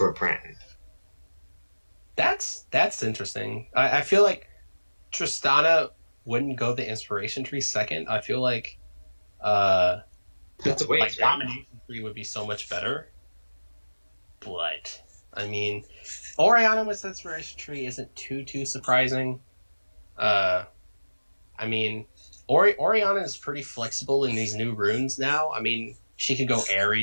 Pran. That's interesting. I feel like Tristana wouldn't go the inspiration tree second. I feel like that's a waste, right? Domination tree would be so much better. But I mean, Orianna with inspiration tree isn't too surprising. I mean, Orianna is pretty flexible in these new runes now. I mean, she could go Aerie,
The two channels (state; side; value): inverted; both; correlation -1.00